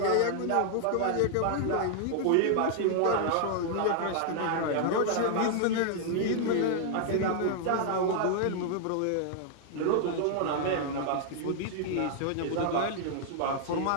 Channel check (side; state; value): both; different; correlation -0.01